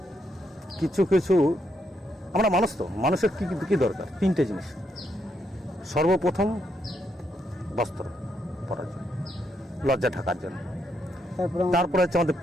কিছু কিছু আমরা মানুষ তো, মানুষের কি কি দরকার? তিনটে জিনিস। সর্বপ্রথম বস্ত্র পরার জন্য, লজ্জা ঢাকার জন্য। তারপরে হচ্ছে আমাদের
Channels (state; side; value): normal; both; correlation 0.77